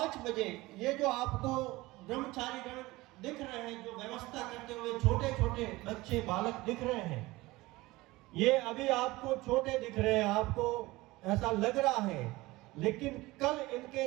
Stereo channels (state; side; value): quieter; left; 20.2 dB